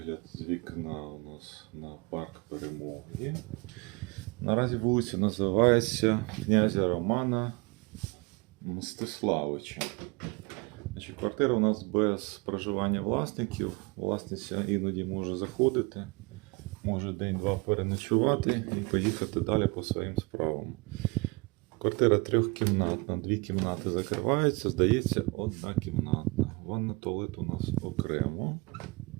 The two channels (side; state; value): left; quieter; 27.2 dB